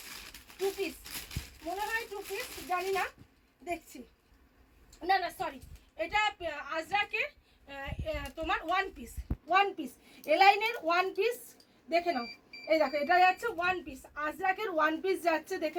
2 পিস, মনে হয় 2 পিস, জানি না, দেখছি। না না সরি, এটা আজরাকের তোমার 1 পিস, 1 পিস, এলাইনের 1 পিস। দেখে নাও, এই দেখো এটা যাচ্ছে ওয়ান পিস, আজরাকের ওয়ান পিস যাচ্ছে,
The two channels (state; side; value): identical; both; correlation 1.00